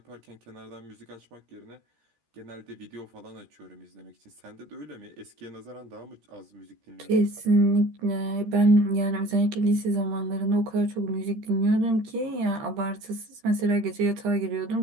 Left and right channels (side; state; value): left; late; 13 ms